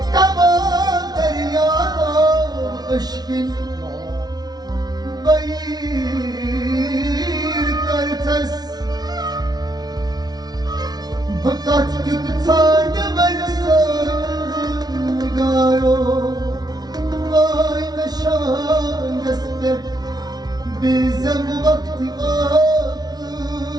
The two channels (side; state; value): left; late; 0.19 ms